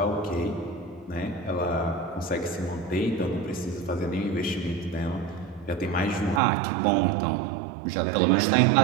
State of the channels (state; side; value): drops out; left; at 6.4 s